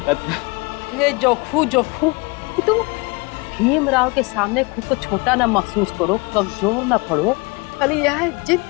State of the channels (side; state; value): right; quieter; 27.7 dB